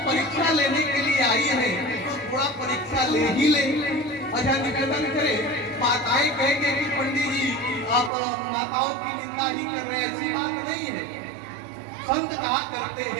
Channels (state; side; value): drops out; left; at 8.1 s